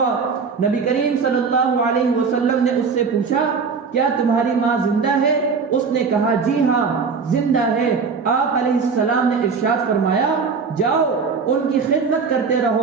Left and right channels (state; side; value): quieter; left; 5.3 dB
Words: نبی کریم صلی اللہ علیہ وسلم نے اس سے پوچھا، کیا تمہاری ماں زندہ ہے؟ اس نے کہا، جی ہاں زندہ ہے۔ آپ علیہ السلام نے ارشاد فرمایا، جاؤ ان کی خدمت کرتے